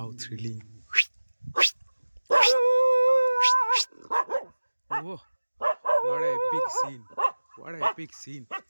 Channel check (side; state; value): both; inverted; correlation -1.00